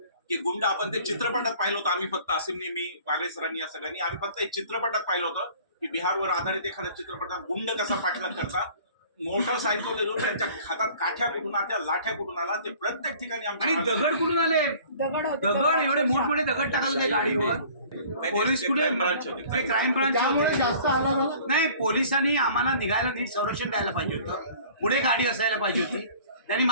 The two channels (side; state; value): both; inverted; correlation -0.49